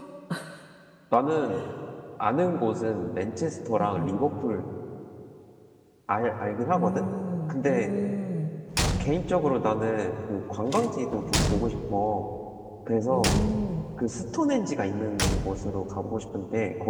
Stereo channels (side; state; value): both; identical; correlation 1.00